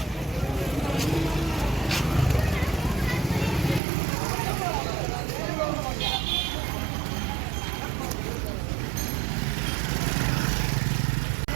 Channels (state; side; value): drops out; left; at 3.8 s